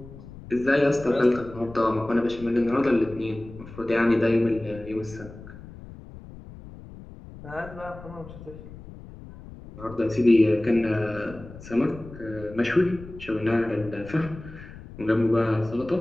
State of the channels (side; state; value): left; noise; rumble, 16 dB below the sound